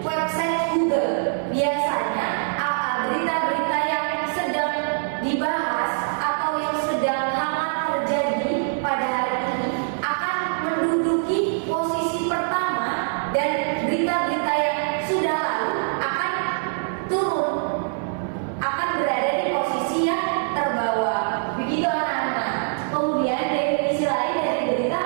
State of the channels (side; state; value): left; silent; digital silence